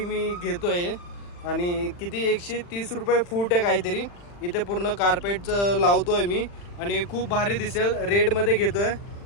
मी घेतो आहे. आणि किती 130 रुपये फूट आहे काहीतरी. इथे पूर्ण कार्पेटचं लावतो आहे मी आणि खूप भारी दिसेल. रेडमध्ये घेतो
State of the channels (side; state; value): right; late; 40 ms